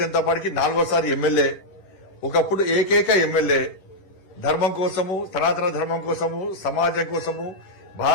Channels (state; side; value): late; right; 10 ms